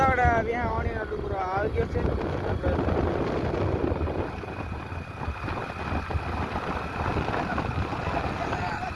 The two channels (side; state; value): both; identical; correlation 1.00